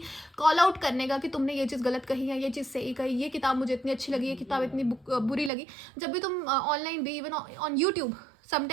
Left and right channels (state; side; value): drops out; left; at 5.5 s